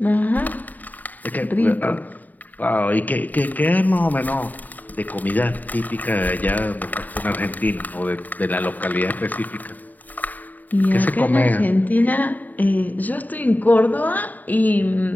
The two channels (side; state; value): right; late; 0.082 ms